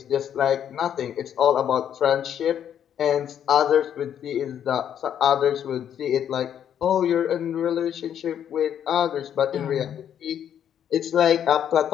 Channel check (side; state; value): right; quieter; 9.4 dB